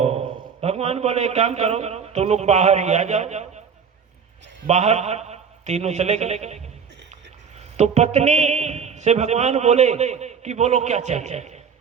भगवान बोले एक काम करो, तो लोग बाहर ही आ जाओ। बाहर तीनों चले गए। तो पत्नी से भगवान बोले कि बोलो क्या चाहिए,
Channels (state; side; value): quieter; left; 6.5 dB